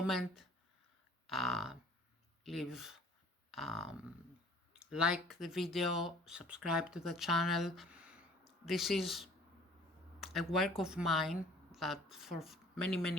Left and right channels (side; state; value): both; normal; correlation 0.53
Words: leave like the video, subscribe to the channel. This is a work of mine that for